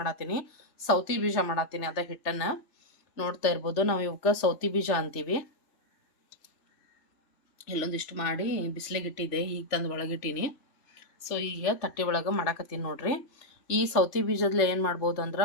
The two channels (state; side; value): late; right; 3.3 ms